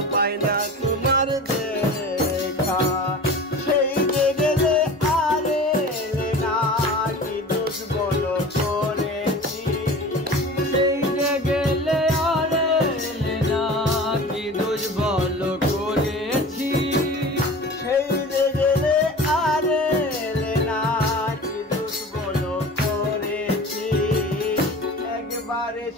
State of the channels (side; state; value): both; normal; correlation 0.38